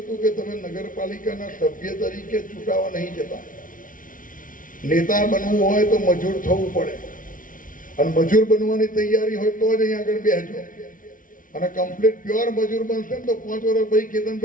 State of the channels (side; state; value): right; late; 0.39 ms